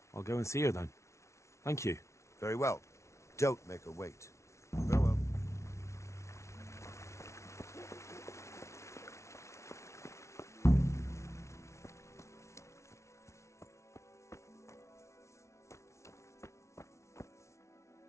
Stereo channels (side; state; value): right; late; 0.13 ms